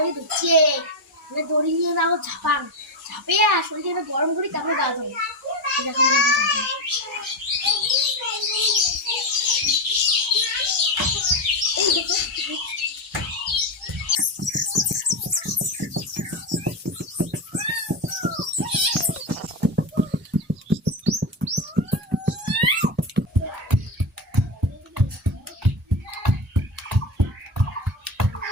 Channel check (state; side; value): normal; both; correlation 0.15